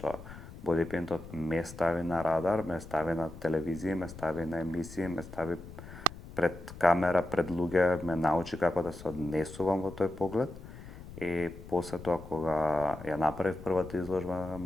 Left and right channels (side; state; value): left; noise; rumble, 15 dB below the sound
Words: Body Paint-от ме стави на радар, ме стави на телевизија, ме стави на емисии, ме стави пред камера, пред луѓе, ме научи како да се однесувам во тој поглед. И после тоа кога ја направив првата изложба на